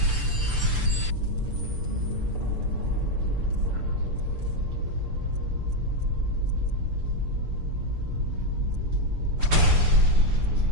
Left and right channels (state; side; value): late; left; 6.8 ms